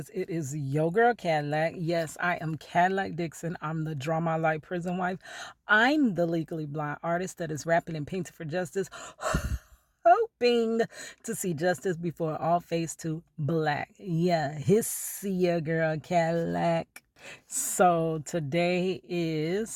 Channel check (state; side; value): identical; both; correlation 1.00